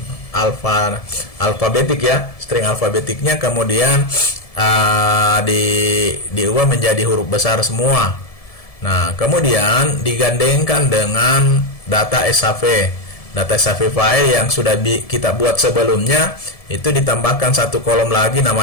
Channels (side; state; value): right; late; 1.7 ms